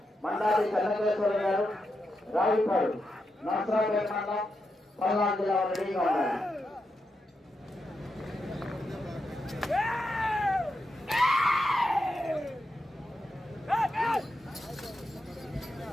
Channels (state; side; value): normal; both; correlation 0.86